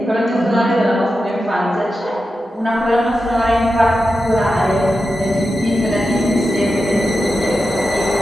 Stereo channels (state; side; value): normal; both; correlation 0.90